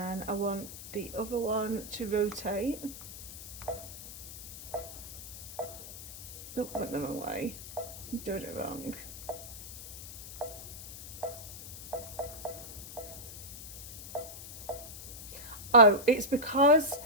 I want the other one to rotate. Nope, went the wrong way. I'm doing it wrong. Oh, it's because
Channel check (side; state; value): left; noise; hiss, 12 dB below the sound